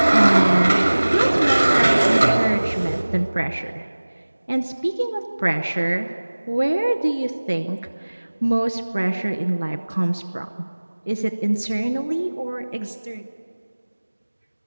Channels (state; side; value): inverted; both; correlation -1.00